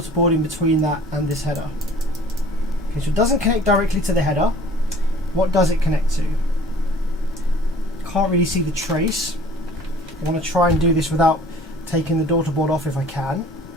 board in between that and this header? Okay, so it doesn't connect directly to the header. What does it connect to? Can't really see the trace. I want to try and do this without taking the daughter board off if I can.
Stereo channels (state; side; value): normal; both; correlation 0.49